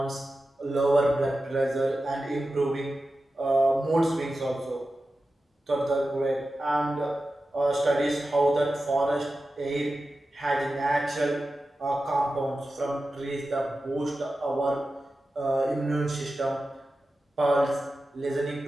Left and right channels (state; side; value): normal; both; correlation 0.93